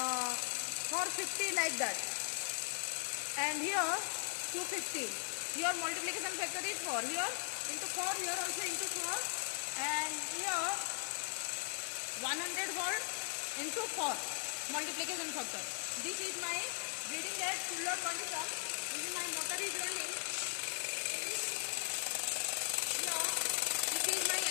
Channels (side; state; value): right; silent; digital silence